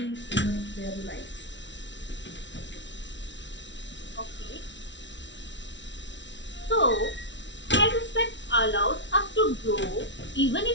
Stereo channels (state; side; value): late; right; 0.53 ms